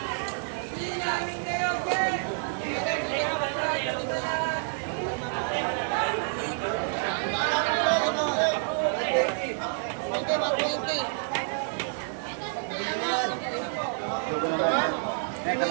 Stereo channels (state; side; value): silent; left; digital silence